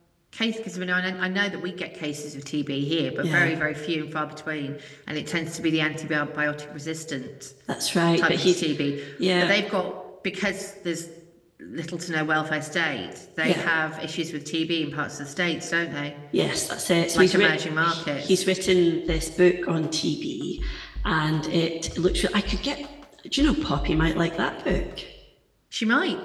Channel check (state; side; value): identical; both; correlation 1.00